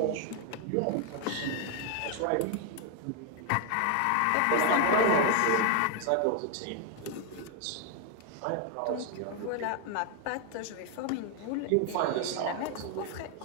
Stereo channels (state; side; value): different; both; correlation 0.00